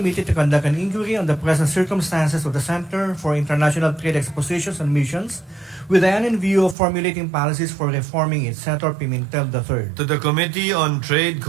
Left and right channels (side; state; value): left; drops out; at 6.8 s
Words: to conduct an inquiry on the present circumstances of the Center for International Trade Expositions and Missions, with the end in view of formulating policies for reforming it. Senator Pimentel III. To the Committee on Trade,